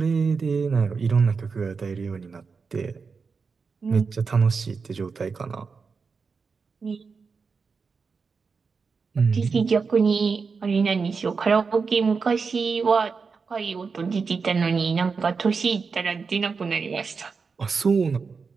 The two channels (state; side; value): quieter; left; 5.0 dB